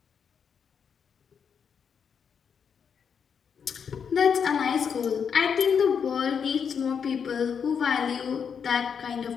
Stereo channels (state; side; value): quieter; right; 6.9 dB